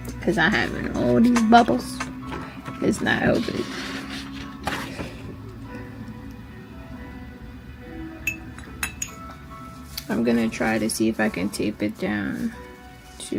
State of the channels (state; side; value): identical; both; correlation 1.00